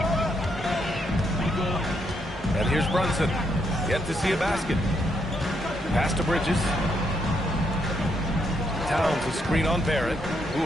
And here's Brunson. Yet to see a basket. Pass to Bridges. Towns a screen on Barrett.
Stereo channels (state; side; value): normal; both; correlation 0.76